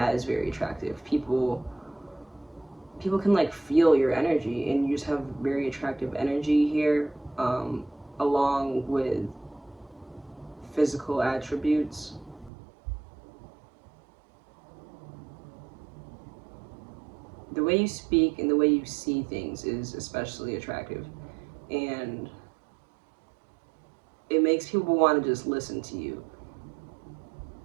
is very attractive. People people can like feel your energy, and you just have very attractive energy here, along with physical attributes. The way you speak and the way you see things is especially attractive, and it makes people want to just listen to you.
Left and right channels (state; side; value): drops out; left; at 12.5 s